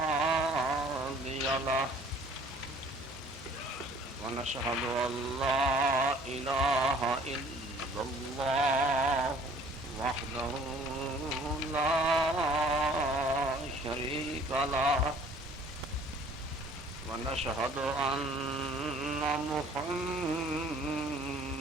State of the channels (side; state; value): both; normal; correlation 0.54